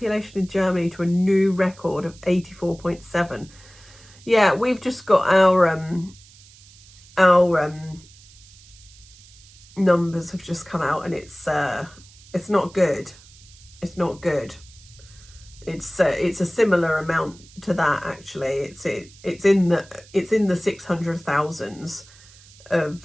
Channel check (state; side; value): noise; right; hiss, 24 dB below the sound